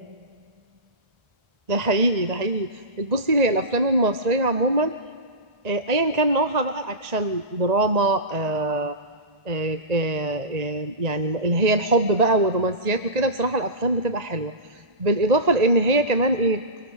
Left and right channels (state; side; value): late; left; 1.8 ms